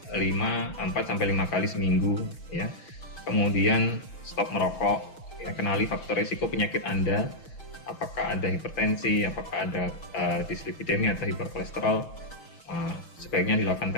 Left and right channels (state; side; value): late; right; 6.4 ms